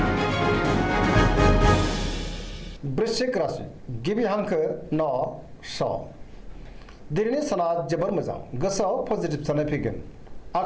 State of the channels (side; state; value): both; identical; correlation 1.00